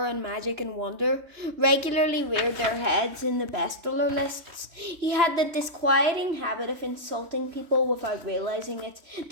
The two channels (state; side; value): late; left; 3.0 ms